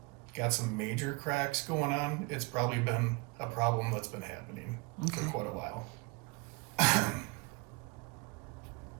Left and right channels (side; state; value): left; quieter; 25.9 dB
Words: got some major cracks going on, it's probably been a problem that's been happening for Okay. quite a while.